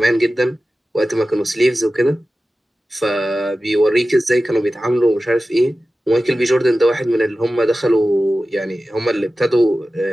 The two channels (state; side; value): normal; both; correlation 0.95